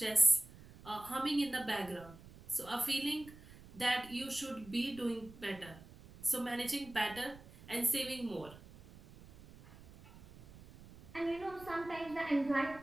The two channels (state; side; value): noise; right; rumble, 19 dB below the sound